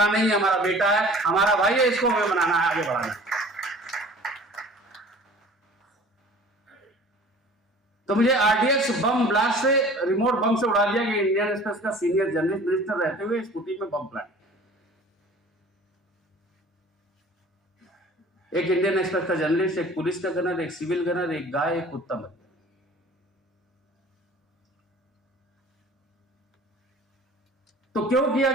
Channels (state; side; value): normal; both; correlation 0.46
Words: नहीं, हमारा बेटा है, हमारा भाई है, इसको हमें बनाना है, आगे बढ़ाना है। तो मुझे आरडीएक्स बम ब्लास्ट से, रिमोट बम से उड़ा दिया कि इंडियन एक्सप्रेस का सीनियर जर्नलिस्ट मिनिस्टर रहते हुए स्कूटी में बम प्लांट। एक इंडियन एक्सप्रेस का जर्नलिस्ट, एक पुलिस का गनर, एक सिविल गनर, एक गाय, एक कुत्ता मर गया। तो क्यों किया